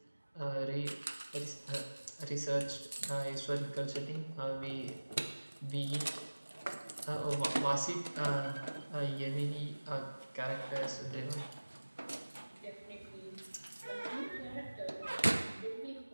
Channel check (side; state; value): both; inverted; correlation -1.00